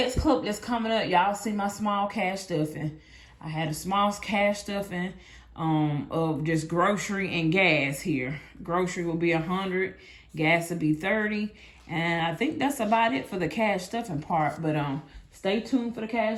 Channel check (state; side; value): identical; both; correlation 1.00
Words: clip that's coming up, y'all see my small cash stuffing. I had a small cash stuffing of just grocery and gas here. Grocery will be 100, gas will be 30. And I think that's about it for the cash stuffing part. But stay tuned for the